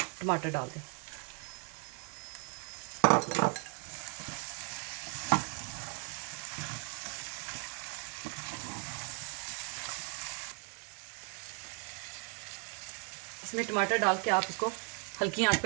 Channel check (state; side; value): quieter; left; 33.9 dB